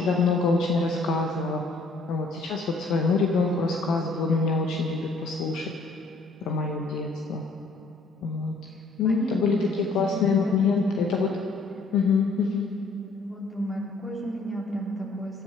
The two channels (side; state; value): right; quieter; 3.5 dB